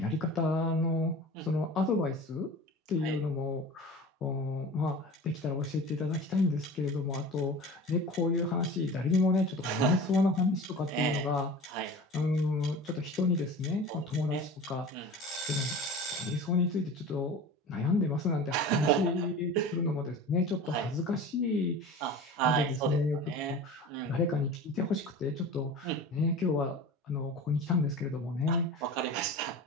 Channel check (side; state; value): both; normal; correlation 0.36